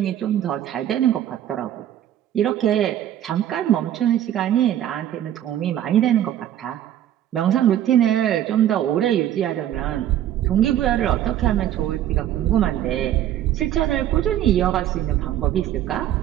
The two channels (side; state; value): left; quieter; 11.6 dB